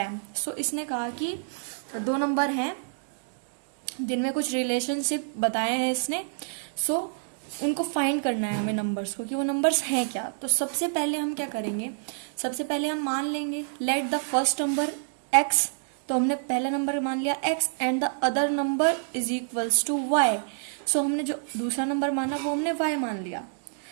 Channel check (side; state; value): left; silent; digital silence